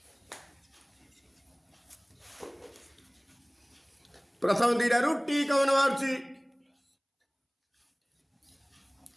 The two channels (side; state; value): both; identical; correlation 1.00